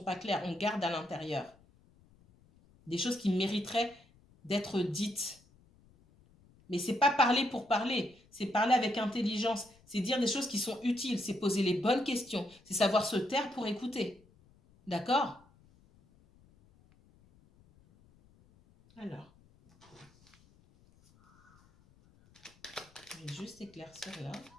pas claires. On garde à l'intérieur des choses qui mériteraient d'être dites. Mais c'est pas parler pour parler, c'est parler avec intelligence, c'est dire des choses qui sont utiles, c'est poser les bonnes questions, c'est savoir se taire pour écouter. D'accord? Alors, je vais juste éclaircir là.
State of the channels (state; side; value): noise; left; rumble, 29 dB below the sound